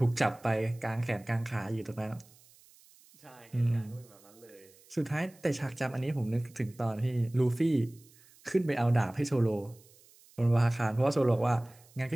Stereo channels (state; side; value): noise; right; hiss, 27 dB below the sound